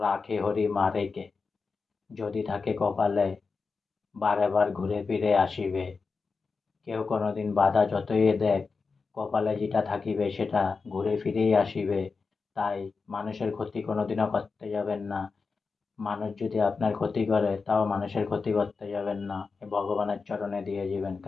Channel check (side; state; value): right; quieter; 4.7 dB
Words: রাখে হরি মারে কে, যদি থাকে কপালে বারে বার ঘুরে ফিরে আসিবে। কেউ কোনোদিন বাধা যতই দেখ, কপালে যেটা থাকিবে সেটা ঘুরে ফিরেই আসিবে। তাই মানুষের ক্ষতি কোনোদিনও করতে যাবেন না। মানুষ যদি আপনার ক্ষতি করে তাও মানুষের ক্ষতি করতে যাবেন না, ভগবানের চরণে দিয়ে যাবেন।